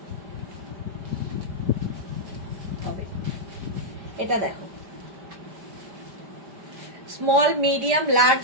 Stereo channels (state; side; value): late; left; 5.1 ms